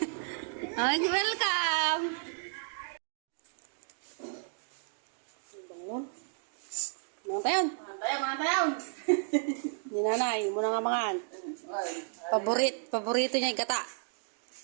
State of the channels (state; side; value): silent; left; digital silence